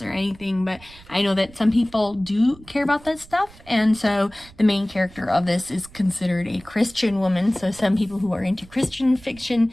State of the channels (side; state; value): right; noise; rumble, 22 dB below the sound